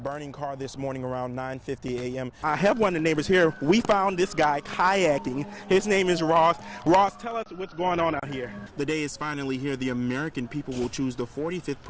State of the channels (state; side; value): identical; both; correlation 1.00